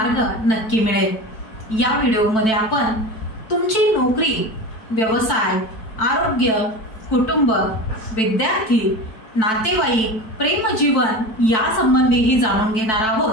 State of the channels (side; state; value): right; late; 4.6 ms